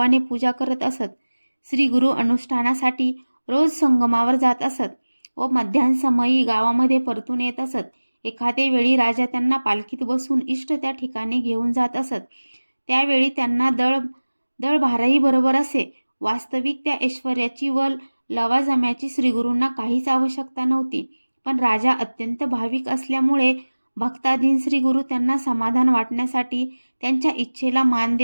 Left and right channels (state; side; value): inverted; both; correlation -1.00